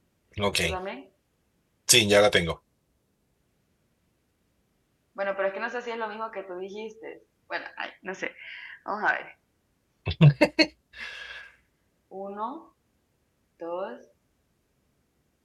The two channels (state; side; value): identical; both; correlation 1.00